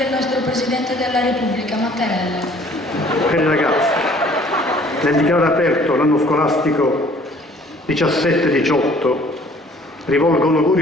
nostro Presidente della Repubblica, Mattarella. Cari ragazzi, nel dichiarare aperto l'anno scolastico 17-18 rivolgo un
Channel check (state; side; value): normal; both; correlation 0.55